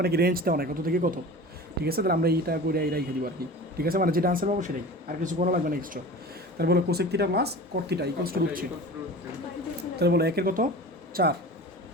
কি রেঞ্জ দেওয়া নাই কত থেকে কত। ঠিক আছে, তাহলে আমরা এইটা করে এই রেখে দিব আর কি। ঠিক আছে, মানে যেটা আনসার পাবো সেটাই, আর কিছু করা লাগবে না এক্সট্রা। তাহলে বলো cosec theta plus coat theta equals to √3। তাহলে বলো 1 এর কত 4,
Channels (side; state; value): both; normal; correlation 0.36